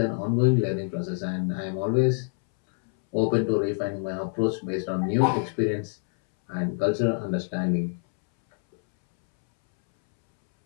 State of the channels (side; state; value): right; silent; 61 dB below the other